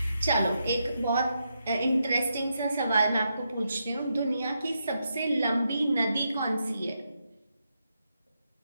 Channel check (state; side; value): inverted; both; correlation -0.83